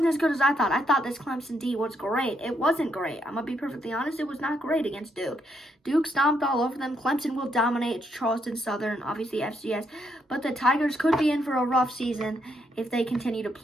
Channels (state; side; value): normal; both; correlation 0.76